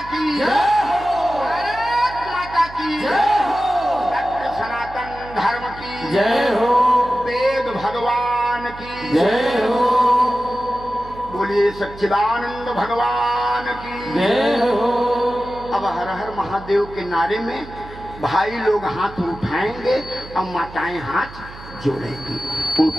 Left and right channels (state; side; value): noise; right; hum, 16 dB below the sound